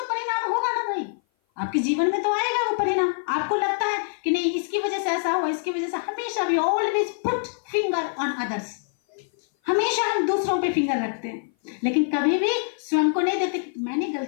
परिणाम होगा ना भाई, आपके जीवन में तो आएगा वो परिणाम। आपको लगता है कि नहीं इसकी वजह से ऐसा हुआ, इसकी वजह से, हमेशा भी always put finger on others, हमेशा हम दूसरों पे फिंगर रखते हैं, लेकिन कभी भी स्वयं को नहीं देखते कि मैंने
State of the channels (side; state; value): right; silent; 57 dB below the other